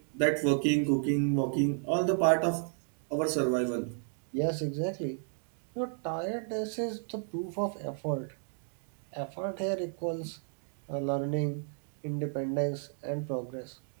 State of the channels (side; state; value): left; silent; 56 dB below the other